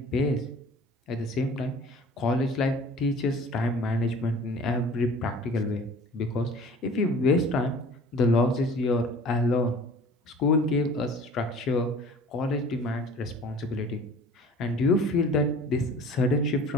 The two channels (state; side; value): normal; both; correlation 0.45